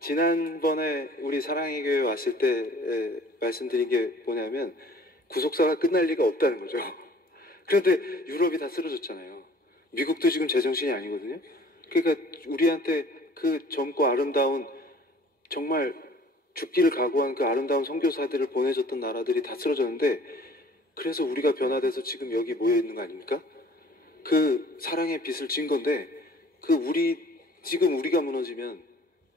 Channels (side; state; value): both; normal; correlation 0.51